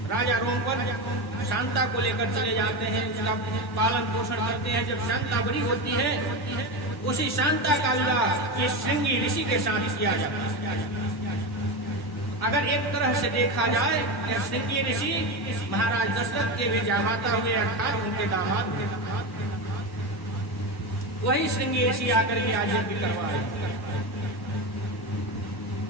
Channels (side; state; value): right; late; 1.1 ms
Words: राजा रोमपद शांता को लेकर चले जाते हैं, उसका पालन पोषण करते हैं। जब शांता बड़ी होती है, उसी शांता का विवाह इस श्रृंगी ऋषि के साथ किया जाता है। अगर एक तरह से देखा जाए तो श्रृंगी ऋषि महाराज दशरथ के भी जामाता हुए, अर्थात उनके दामाद थे। वही श्रृंगी ऋषि आकर के आज यज्ञ करवाए।